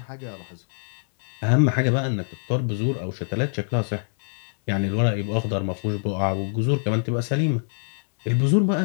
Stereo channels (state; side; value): silent; right; 62 dB below the other